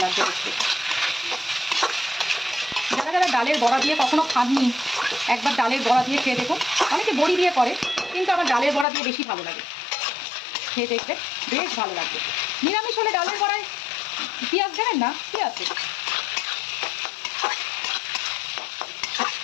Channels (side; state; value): right; drops out; at 8.8 s